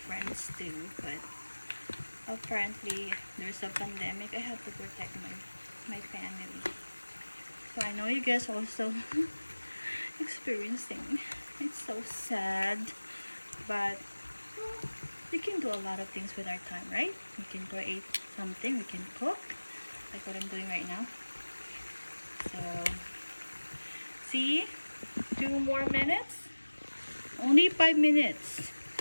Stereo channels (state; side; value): inverted; both; correlation -1.00